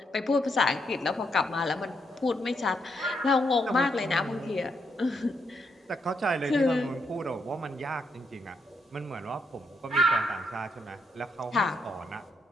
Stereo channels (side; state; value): both; normal; correlation 0.78